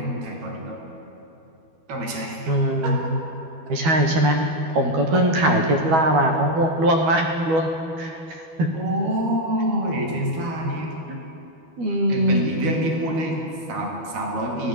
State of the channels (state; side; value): late; left; 12 ms